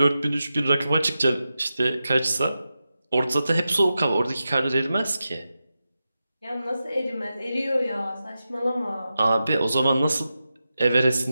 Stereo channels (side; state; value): both; inverted; correlation -0.91